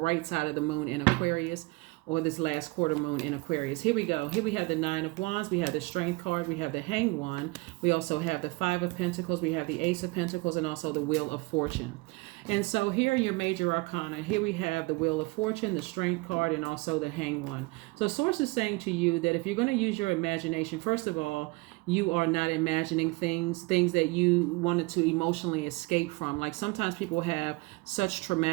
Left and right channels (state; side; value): quieter; left; 25.0 dB